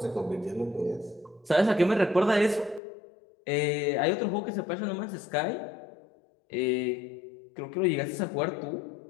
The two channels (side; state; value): right; drops out; at 2.8 s